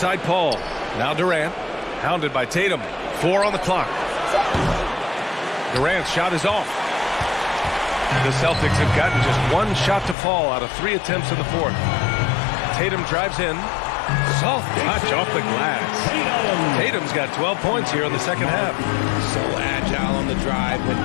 Paul. Now Durant, hounded by Tatum. 4 on the clock. Durant's shot is off. The Celtics have gotten just 1 shot to fall out of 3 attempts in the fourth. Tatum drives in. Soft touch off the glass. Tatum's got 12 points here in the second half. So agile on the drive. When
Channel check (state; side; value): drops out; right; at 10.2 s